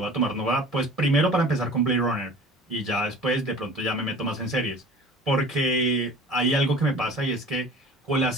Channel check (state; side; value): normal; both; correlation 0.43